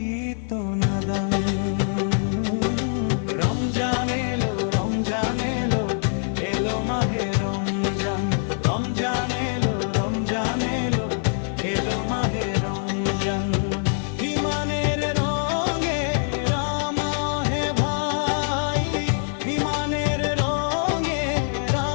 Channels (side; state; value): right; silent; digital silence